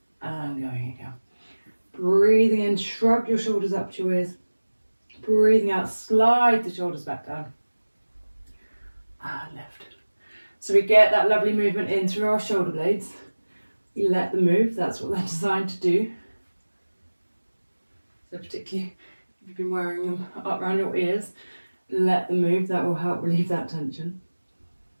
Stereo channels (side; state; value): both; inverted; correlation -1.00